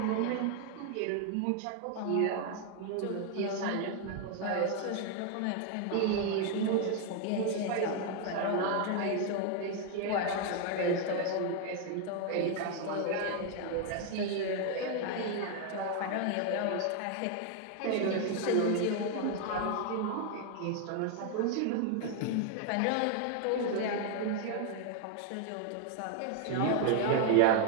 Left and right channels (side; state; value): both; different; correlation 0.00